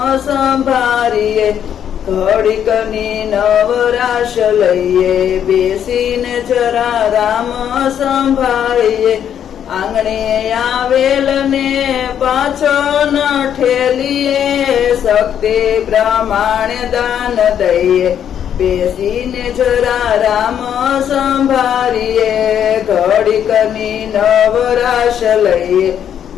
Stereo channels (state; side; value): quieter; right; 9.3 dB